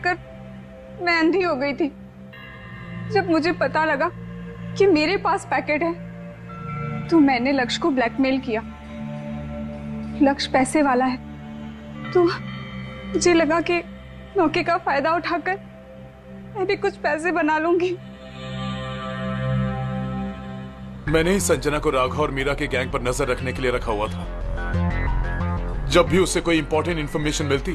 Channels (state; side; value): identical; both; correlation 1.00